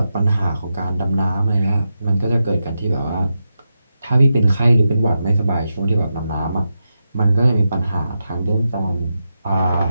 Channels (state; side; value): inverted; both; correlation -0.88